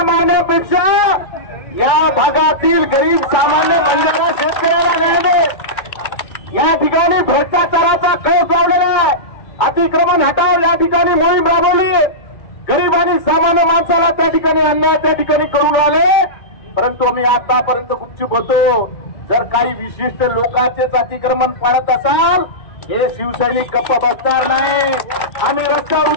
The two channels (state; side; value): late; right; 2.2 ms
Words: मारण्यापेक्षा या भागातील गरीब सामान्य बंजारा शेतकऱ्याला न्याय दे। या ठिकाणी भ्रष्टाचाराचा कळस लावलेला आहे, अतिक्रमण हटाव या ठिकाणी मोहीम राबवली, गरीब आणि सामान्य माणसाला त्या ठिकाणी अन्याय त्या ठिकाणी करून राहिले, परंतु आम्ही आतापर्यंत गुपचूप होतो। जर काही विशिष्ट लोकांचेच अतिक्रमण पाळत असाल हे शिवसैनिक गप्प बसणार नाही, आम्ही रस्त्यावर